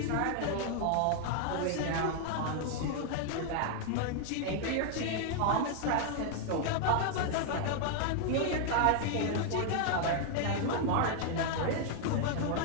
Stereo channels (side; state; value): both; different; correlation 0.00